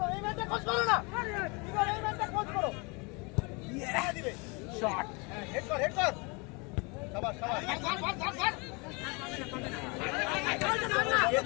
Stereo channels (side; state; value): right; quieter; 29.7 dB